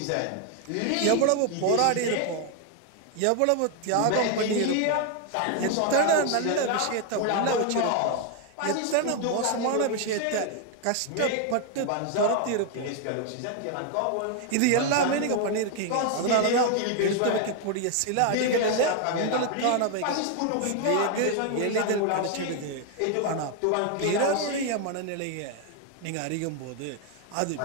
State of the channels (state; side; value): different; both; correlation 0.00